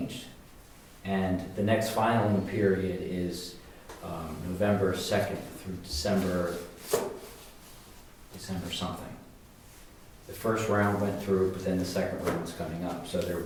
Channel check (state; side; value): identical; both; correlation 1.00